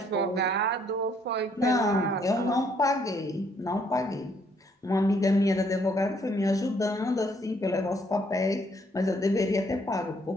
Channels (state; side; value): normal; both; correlation 0.68